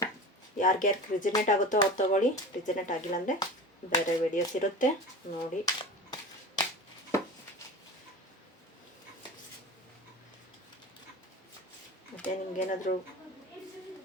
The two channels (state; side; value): normal; both; correlation 0.33